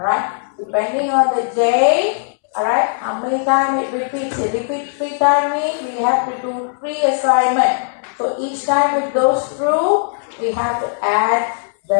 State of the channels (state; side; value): silent; right; 66 dB below the other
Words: depending on the j, alright, how many times it repeats. It repeats 3 times means we have to do 3 assignment. So each time it goes through, we have to add